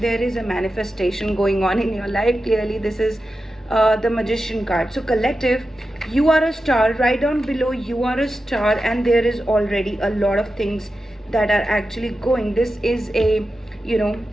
There is a manifestation going on in your life. Clearly this is the magician card. So collective, you are a star. Right down below, you are a star, and there is already a lot of things that are actually going. This is a,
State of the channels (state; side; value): normal; both; correlation 0.91